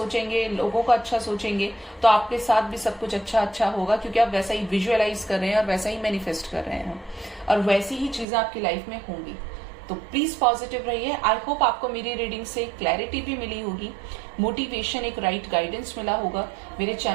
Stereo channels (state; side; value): drops out; left; at 8.2 s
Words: लोगों का अच्छा सोचेंगे, तो आपके साथ भी सब कुछ अच्छा होगा, क्योंकि आप वैसा ही विजुअलाइज कर रहे हैं और वैसा ही मैनिफेस्ट कर रहे हैं और वैसी ही चीजें आपकी लाइफ में होंगी। तो प्लीज पॉजिटिव रहिए। आई होप आपको मेरी रीडिंग से क्लैरिटी भी मिली होगी, मोटिवेशन, एक राइट गाइडेंस मिला होगा। मेरे